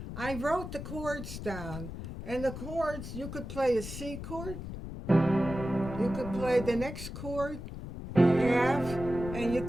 I wrote the chords down. And the chords, you could play a C chord, you could play the next chord, F, and you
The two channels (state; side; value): noise; left; rumble, 9 dB below the sound